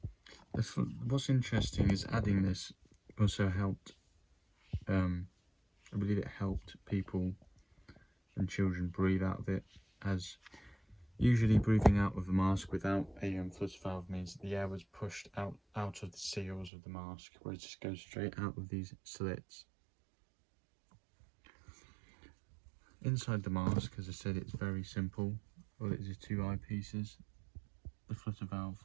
What's interesting is adding this also helped, I believe it helped people and children breathe out of it, as usually breathing out of a mask without a flutter valve means that the air was pushed out of the seals of the mask, whereas it just goes straight out of these slits. Inside the mask, as I said, it's very simple. All it is 2 eyepieces, the flutter valve,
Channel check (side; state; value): left; drops out; at 16.7 s